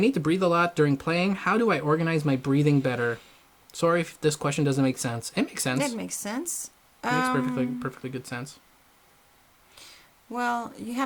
to breathe a lot during playing. How do I organize my breathing better? Sorry if this question doesn't make sense. It makes sense. It makes sense. It makes perfectly good sense. Well, you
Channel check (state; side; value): identical; both; correlation 1.00